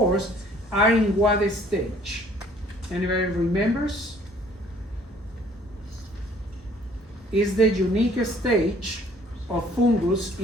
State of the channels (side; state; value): both; normal; correlation 0.58